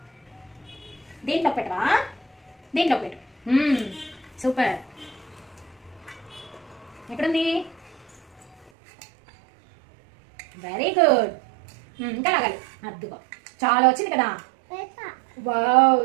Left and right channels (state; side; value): drops out; left; at 8.7 s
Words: దీంట్లో పెట్టవా? దీంట్లో పెట్టు. సూపర్. ఎక్కడుంది? Very good. ఇంకా లాగాలి. అద్దుకో, చాలా వచ్చింది కదా. Wow,